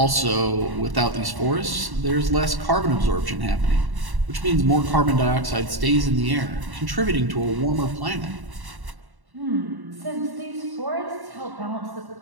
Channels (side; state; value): left; late; 1.1 ms